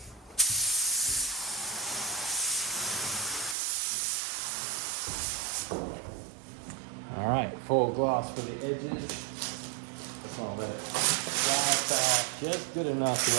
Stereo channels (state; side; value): drops out; left; at 3.6 s